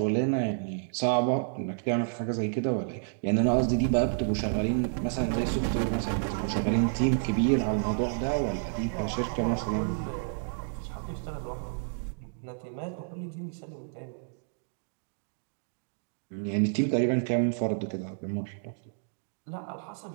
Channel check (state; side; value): silent; left; digital silence